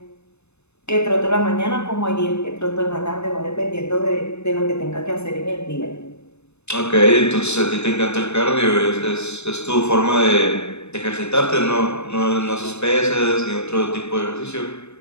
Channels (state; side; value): late; right; 0.81 ms